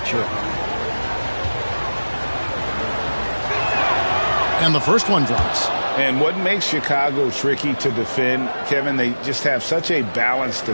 sure. And the first one drops. And what makes Chicago tricky to defend, Kevin, they just have such a balanced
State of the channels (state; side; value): inverted; both; correlation -1.00